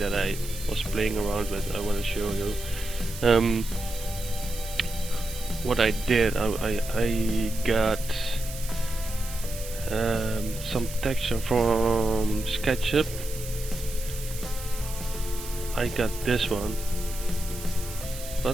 I was playing around with. I want to show you. What I did, I got some texture from SKETCHUP. I got this one,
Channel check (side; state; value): right; noise; hiss, 12 dB below the sound